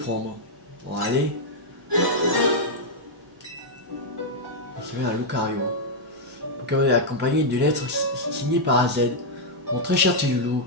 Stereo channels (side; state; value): both; normal; correlation -0.04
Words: Bon, allez. C'est un Lucario. Pokémon est accompagné d'une lettre signée par AZ. Mon très cher petit loulou,